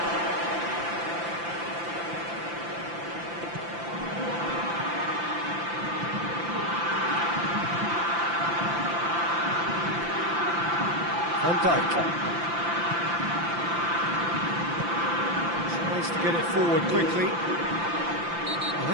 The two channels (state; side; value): late; left; 5.9 ms